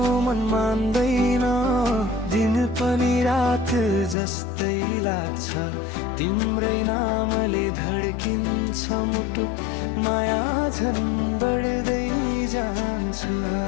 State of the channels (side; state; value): right; drops out; at 4.2 s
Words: मन मान्दैन दिन पनि रात जस्तै लाग्छ तिम्रै नामले धड्किन्छ मुटु माया झन् बढ्दै जान्छ